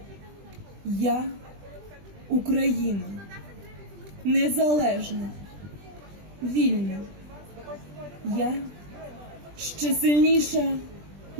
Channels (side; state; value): left; late; 20 ms